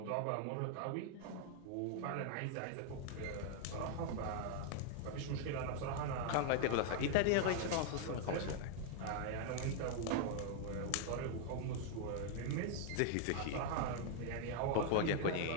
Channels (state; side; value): different; both; correlation 0.00